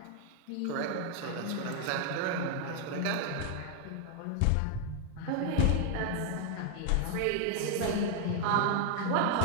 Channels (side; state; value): both; different; correlation 0.00